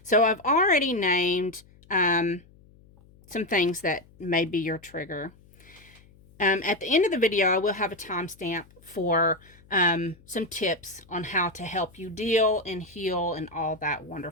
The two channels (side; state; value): left; noise; hum, 27 dB below the sound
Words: So I've already named some things that may be your trigger. At the end of the video, I will have a timestamp for some tips on how to help you deal and heal and all that